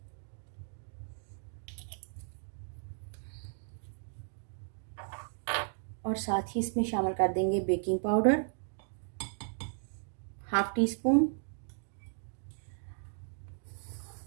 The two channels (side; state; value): left; silent; digital silence